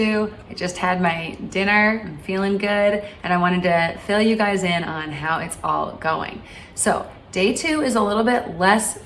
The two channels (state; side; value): identical; both; correlation 1.00